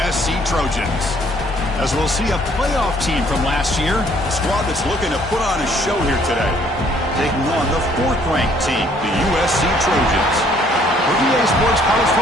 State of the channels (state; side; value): normal; both; correlation 0.62